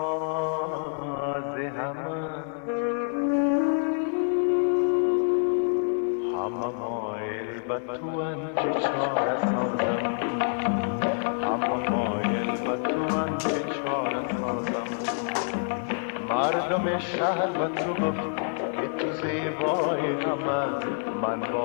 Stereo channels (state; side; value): silent; right; digital silence